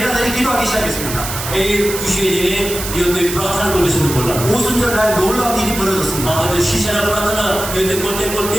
기도하기 시작했습니다. এই বিষয়ে জেনে নিয়ত প্রার্থনা করতে শুরু করলাম 오순절날 놀라운 일이 벌어졌습니다. আমাদের শিষ্যরা প্রার্থনা নিয়ত করতে করতে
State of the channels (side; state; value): right; noise; hiss, 7 dB below the sound